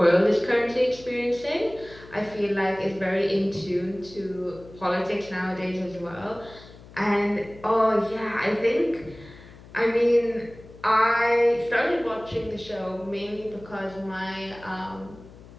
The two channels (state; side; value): noise; left; hum, 20 dB below the sound